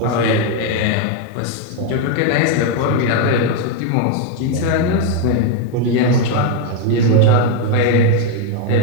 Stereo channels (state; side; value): different; both; correlation 0.01